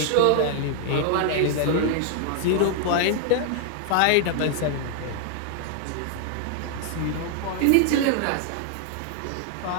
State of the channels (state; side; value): different; both; correlation 0.00